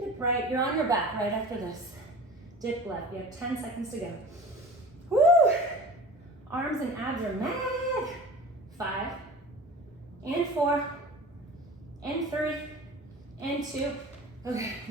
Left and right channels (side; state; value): both; normal; correlation 0.38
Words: right, you're on your back right after this. Dip left, you have 10 seconds to go. Woo! Arms and abs are mad. 5, and 4, and 3, and 2. Okay,